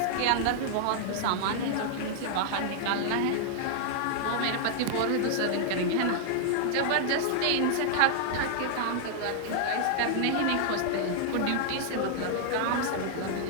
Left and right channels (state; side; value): different; both; correlation -0.01